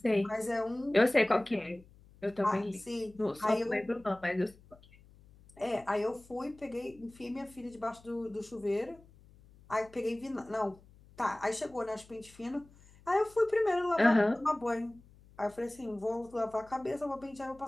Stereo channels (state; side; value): noise; left; hum, 25 dB below the sound